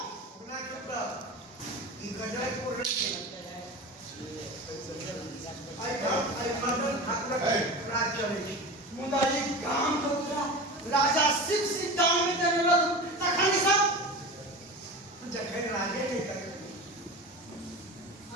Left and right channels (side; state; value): both; normal; correlation 0.30